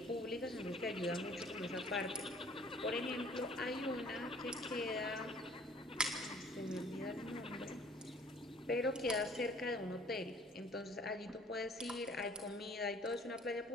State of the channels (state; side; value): normal; both; correlation 0.54